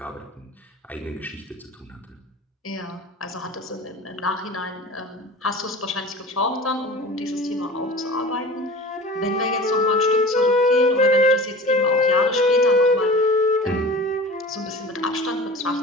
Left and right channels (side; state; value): both; normal; correlation 0.38